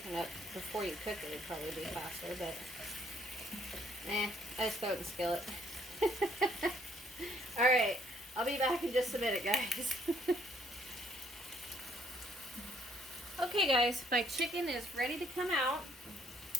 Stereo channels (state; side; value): normal; both; correlation 0.66